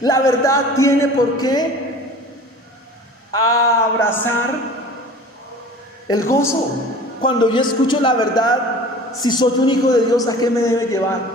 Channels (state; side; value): normal; both; correlation 0.42